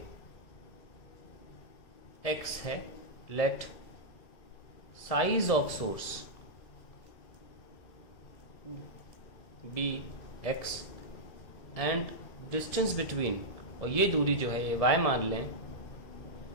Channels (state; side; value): late; right; 1.7 ms